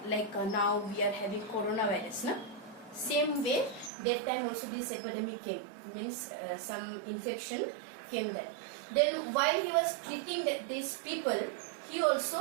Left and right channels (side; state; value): left; drops out; at 3.9 s